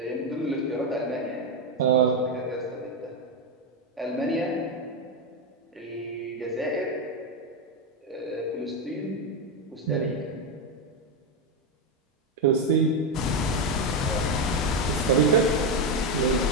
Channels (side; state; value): both; normal; correlation 0.08